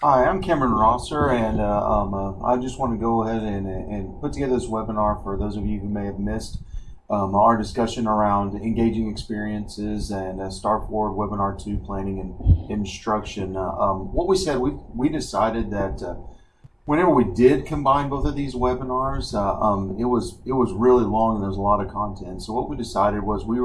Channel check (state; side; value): identical; both; correlation 1.00